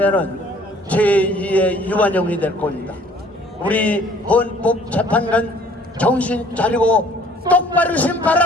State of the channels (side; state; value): both; normal; correlation 0.56